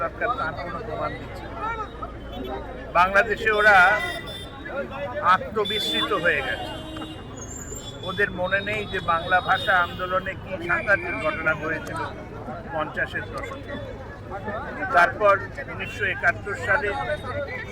দরকার তার কোনো প্রমাণ দিচ্ছেন। বাংলাদেশে ওরা আত্মবিস্মৃত হয়ে গেছে। ওদের মনে নেই যে বাংলা ভাষা আন্দোলনে কি সাংঘাতিক ঘটনা ঘটেছিল 50-এর দশকে। তারপর 1971 সালে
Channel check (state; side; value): identical; both; correlation 1.00